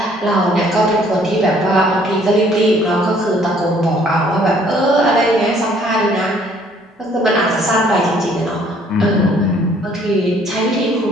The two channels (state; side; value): normal; both; correlation 0.61